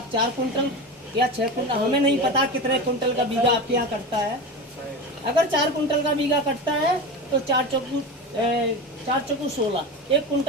4 कुंटल या 6 कुंटल, हमें नहीं पता कितने कुंटल का बीघा आपके यहाँ कटता है। अगर 4 कुंटल का बीघा कटता है तो 4 चौकू 16, 1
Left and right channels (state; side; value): normal; both; correlation 0.25